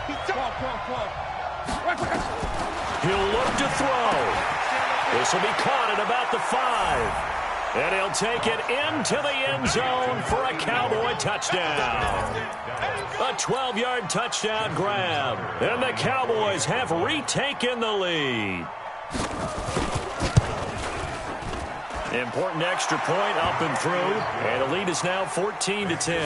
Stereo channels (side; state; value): both; identical; correlation 1.00